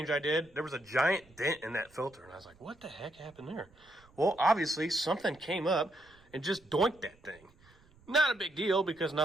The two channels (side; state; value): right; noise; rumble, 28 dB below the sound